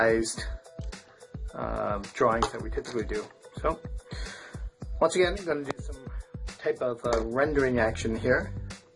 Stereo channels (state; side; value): identical; both; correlation 1.00